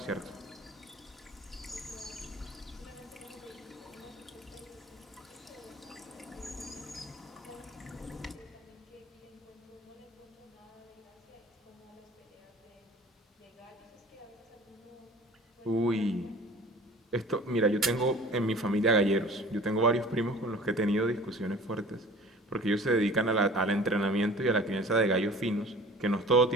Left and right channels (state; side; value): normal; both; correlation 0.45